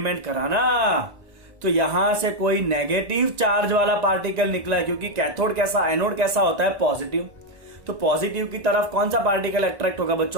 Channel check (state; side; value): late; left; 1.9 ms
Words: करा ना तो यहां से कोई नेगेटिव चार्ज वाला पार्टिकल निकला है। क्योंकि कैथोड कैसा, एनोड कैसा होता है? पॉजिटिव। तो पॉजिटिव की तरफ कौन सा पार्टिकल अट्रैक्ट होगा